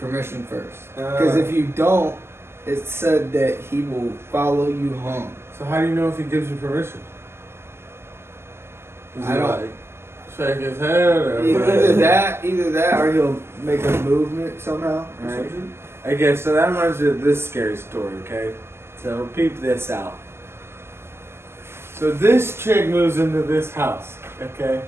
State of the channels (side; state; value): left; late; 0.12 ms